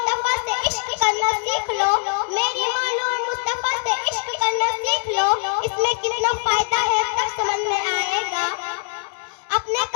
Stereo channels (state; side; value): silent; right; digital silence